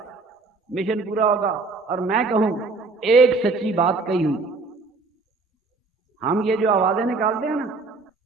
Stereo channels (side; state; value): left; quieter; 3.9 dB